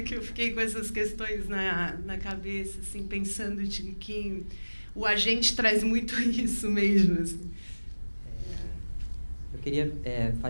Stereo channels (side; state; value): both; inverted; correlation -1.00